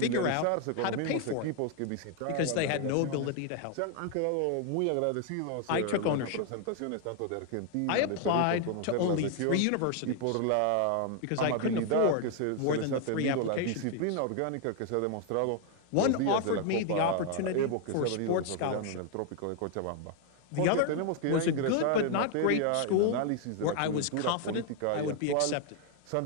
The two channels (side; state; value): both; different; correlation 0.00